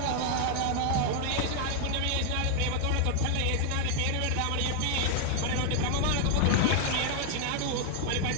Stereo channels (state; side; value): different; both; correlation 0.00